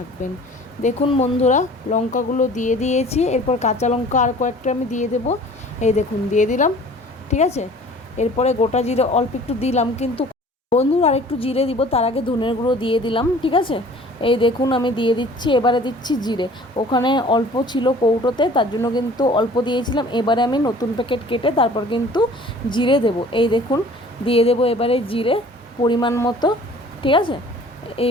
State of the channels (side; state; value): both; normal; correlation 0.49